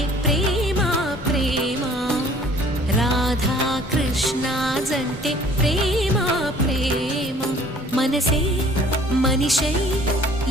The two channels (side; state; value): both; normal; correlation 0.54